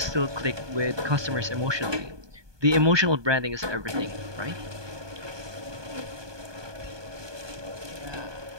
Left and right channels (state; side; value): late; left; 1.2 ms